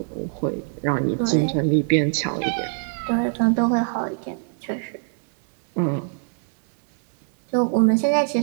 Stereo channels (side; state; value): left; silent; 63 dB below the other